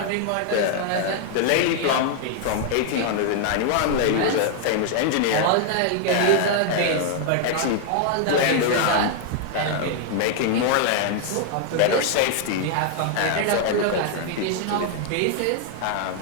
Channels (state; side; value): different; both; correlation 0.00